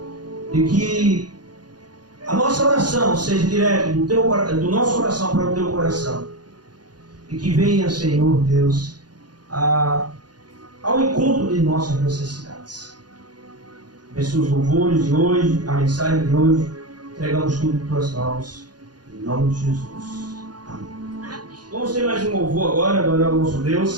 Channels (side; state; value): left; late; 0.69 ms